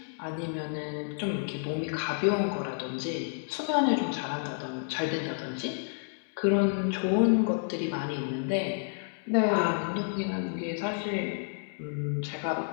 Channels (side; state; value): right; silent; digital silence